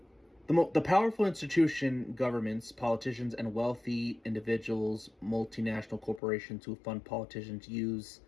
The powerful institution, governments, politicians, and wealthy individuals, multinational corporations who fund politicians use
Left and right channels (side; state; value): right; drops out; at 6.2 s